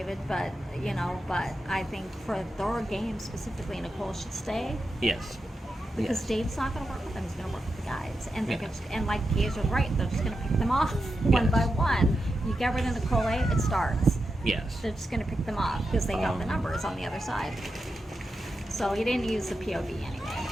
but I think for their game specifically, Nicole should stay Yes. because Yes. Dave's not going to work with them. He's going to work with the guys, and they're Yeah. and like Kaiser's right, they're just going to pick them off one Yes. by one. You get rid of Nicole A, it starts. Yes. They're just going to pick them off because they got the numbers on the other side. So he didn't use the POV anyway.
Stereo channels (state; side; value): normal; both; correlation 0.88